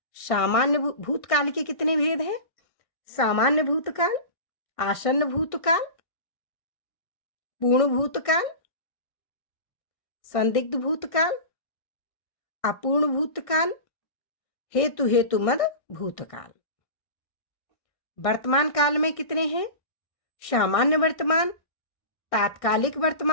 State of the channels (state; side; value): late; right; 1.6 ms